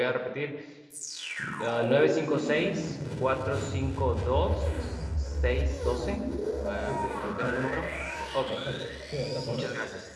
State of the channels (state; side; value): identical; both; correlation 1.00